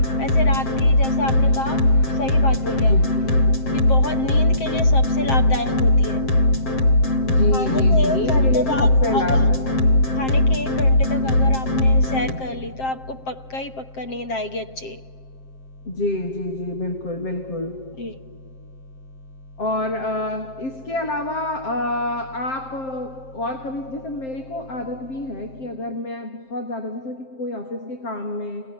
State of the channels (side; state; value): right; late; 7.6 ms